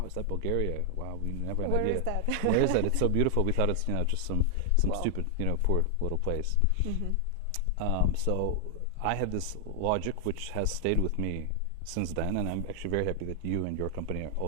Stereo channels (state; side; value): different; both; correlation 0.00